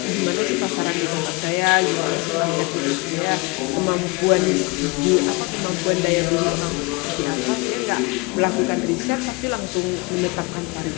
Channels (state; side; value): quieter; right; 26.4 dB